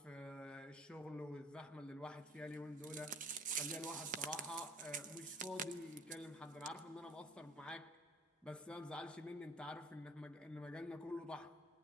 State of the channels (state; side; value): normal; both; correlation 0.52